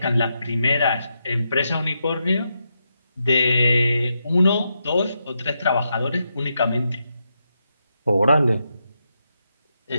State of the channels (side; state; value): both; inverted; correlation -0.84